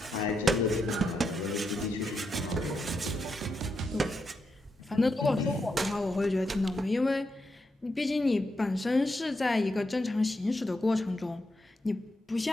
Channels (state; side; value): normal; both; correlation 0.84